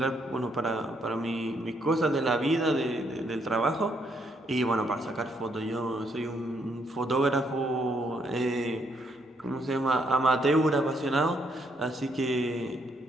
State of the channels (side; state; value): both; normal; correlation 0.73